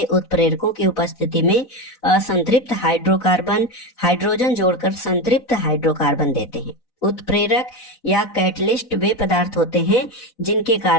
उत्प्रेरकों की उपस्थिति में असंतृप्त हाइड्रोकार्बन हाइड्रोजन जोड़कर संतृप्त हाइड्रोकार्बन देते हैं। उत्प्रेरक या कैटलिस्ट वे पदार्थ होते हैं जिनके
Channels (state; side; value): late; right; 4.0 ms